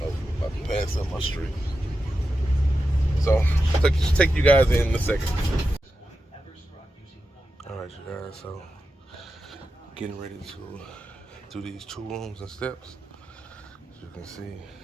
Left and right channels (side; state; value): both; normal; correlation 0.90